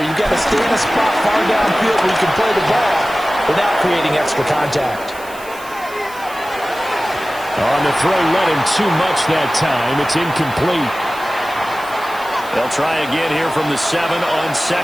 You've got to stay in a spot far downfield where you can play the ball without creating extra contact. On the throw, let him too much that time. It's incomplete. They'll try again here from the 7 on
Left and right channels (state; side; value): noise; right; hiss, 19 dB below the sound